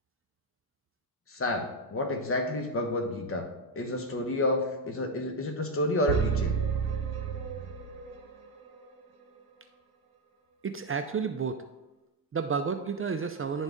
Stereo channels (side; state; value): both; normal; correlation 0.05